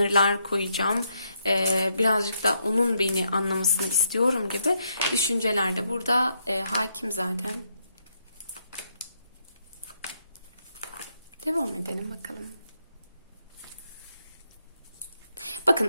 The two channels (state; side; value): inverted; both; correlation -0.78